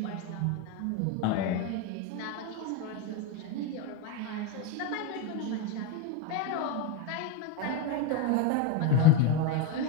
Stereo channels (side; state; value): both; different; correlation 0.04